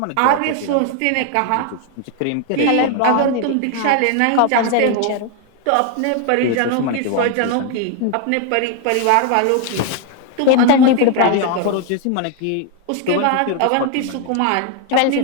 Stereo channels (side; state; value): both; different; correlation 0.01